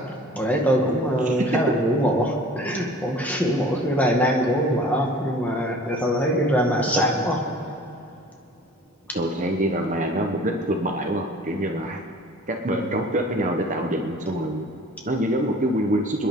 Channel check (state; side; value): normal; both; correlation 0.47